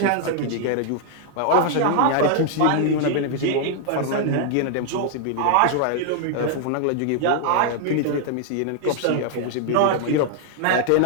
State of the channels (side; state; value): both; different; correlation 0.00